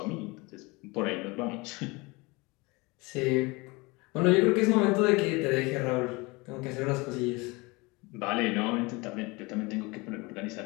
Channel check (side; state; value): right; quieter; 25.3 dB